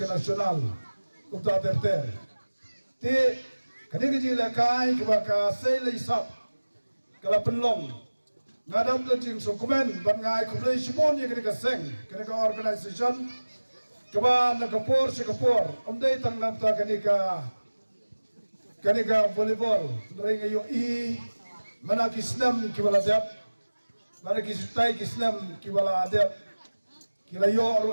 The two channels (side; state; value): both; inverted; correlation -1.00